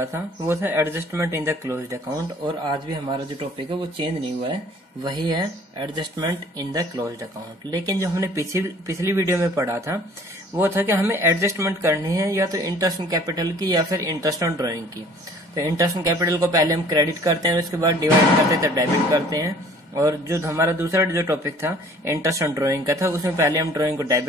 था वो था adjustment in the closed account, और आज भी हमारा जो टॉपिक है वो चेंज नहीं हुआ है, वही है adjustment in the closed account. लेकिन जो हमने पिछली वीडियो में पढ़ा था वो था कि हमें एडजस्टमेंट करनी है या तो इंटरेस्ट ऑन कैपिटल की या फिर इंटरेस्ट ऑन ड्रॉइंग की। तो इंटरेस्ट ऑन कैपिटल को पहले हम क्रेडिट करते हैं, उसके बाद डिवाइड करते हैं तो डेबिट करते हैं। और जो हमारा दूसरा जो टॉपिक था इंटरेस्ट ऑन ड्राइंग का था, उसमें पहले हम ड्राइंग को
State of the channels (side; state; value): both; normal; correlation 0.53